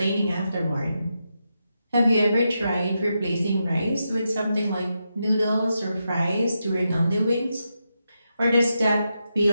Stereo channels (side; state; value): both; inverted; correlation -0.85